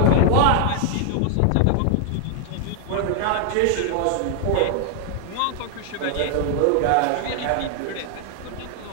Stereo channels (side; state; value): both; different; correlation 0.00